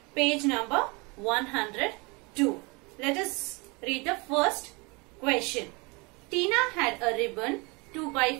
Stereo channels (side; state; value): left; quieter; 28.1 dB